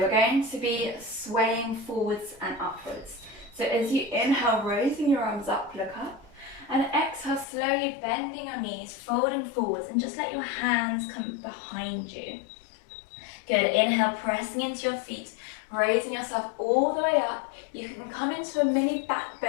we're going to be swaying forwards and upwards. So as you inhale, raising your arms up, look up. And exhale, slowly bending your knees, folding forwards, and just let your hands come behind you. Good, inhale, pressing into your feet, raising yourself all the way up. You can come into a mini back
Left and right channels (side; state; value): right; drops out; at 7.5 s